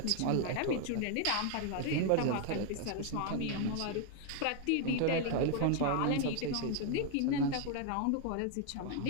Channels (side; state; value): both; different; correlation 0.00